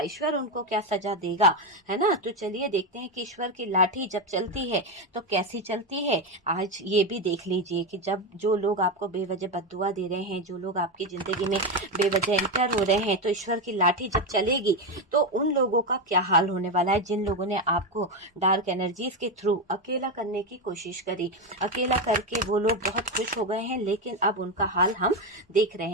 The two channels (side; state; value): both; normal; correlation 0.11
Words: उनको क्या सजा देगा, है ना। तो चलिए देखते हैं कि ईश्वर की लाठी जब चलती है तो कैसी चलती है। आज ये भी देख लीजिए कि जब जो लोग आपको बेवजह बद्दुआ दे रहे हैं, जो लोग आपकी जिंदगी में बेवजह एंटर हो रहे हैं, तो ईश्वर की लाठी जब चलेगी तो उन लोगों का क्या हाल होने वाला है, जिन लोगों ने आपको डार्क एनर्जीज के थ्रू अकेला करने की कोशिश करी। अकेला करके वो लोग बहुत खुश हो गए हैं, लेकिन अब उनका हाल हम देख